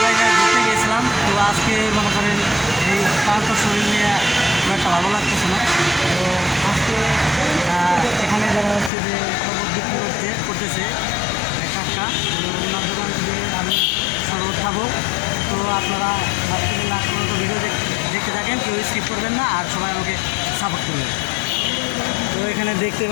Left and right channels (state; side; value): drops out; right; at 8.9 s